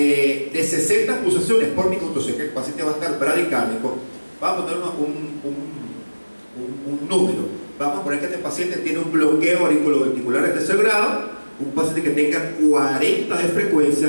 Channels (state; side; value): inverted; both; correlation -1.00